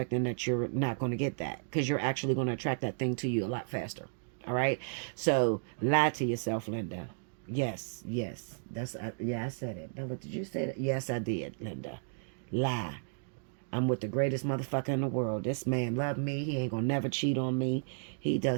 that you're not going to get that, because you're actually going to attract that thing to you a lot faster. All right, so lie to yourself, Linda. Yes, that's yeah, I said it. Bella, did you say that? Yes, I did, Linda. Lie. I'm with the greatest motherfucker in the world. This man love me. He ain't gonna never cheat on me. He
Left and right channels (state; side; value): silent; left; digital silence